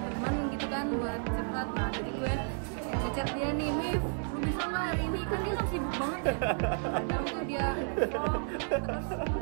teman gitu kan buat curhat. Nah jadi gue ngechat dia nih, Mif, lu bisa nggak hari ini? Kan dia kan sibuk banget ya. Kadang tuh dia vlog, terus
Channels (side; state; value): left; silent; 56 dB below the other